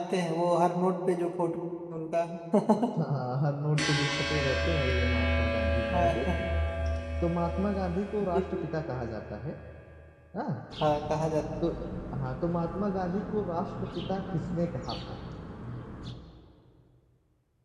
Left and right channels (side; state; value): both; identical; correlation 1.00